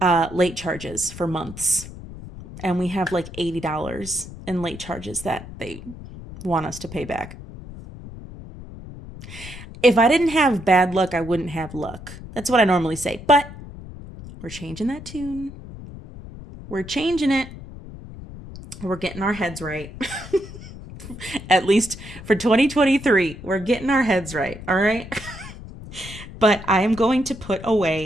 late charges for months. And we have like $80 in late charges that they want us to pay back. If I didn't have bad luck, I wouldn't have luck. That's what I normally say. But we're changing that tune. We're changing it. We're getting our heads right. At least for 2023, we're getting our heads right. All right. But I am going to put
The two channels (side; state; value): left; noise; rumble, 14 dB below the sound